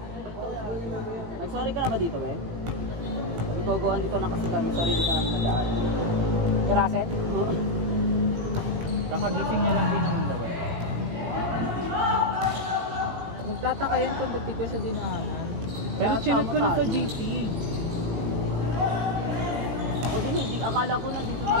Nag-sorry ka na ba dito, Ben? Pag ito, dito lang kasi kami, sorry di ka naman nagdaan. Kurasen? Kakagising niya lang din naman daw. Magtataka yan kung ba't di ko siya dinaanan. Pero chinag ko na sa GC. Huwag hindi, akala ko na dito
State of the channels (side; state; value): left; late; 17 ms